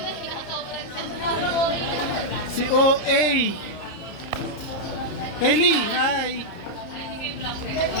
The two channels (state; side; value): late; right; 30 ms